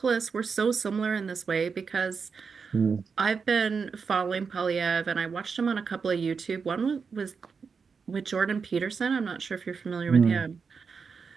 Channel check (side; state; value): left; quieter; 5.5 dB